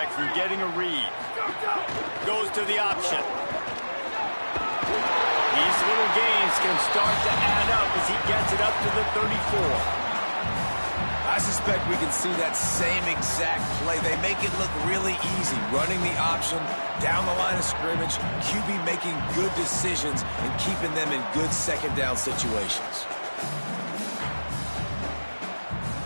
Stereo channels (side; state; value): both; inverted; correlation -1.00